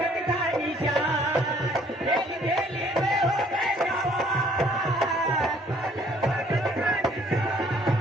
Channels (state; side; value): normal; both; correlation 0.60